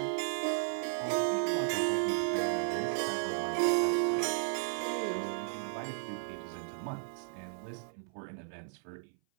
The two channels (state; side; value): silent; left; 55 dB below the other